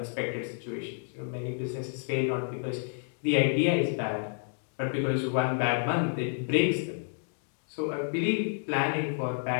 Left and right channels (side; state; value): right; silent; digital silence